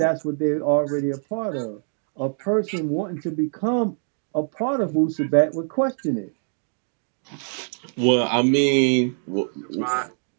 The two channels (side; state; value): left; silent; 63 dB below the other